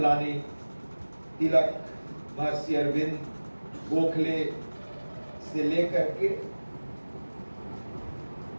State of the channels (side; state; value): both; inverted; correlation -1.00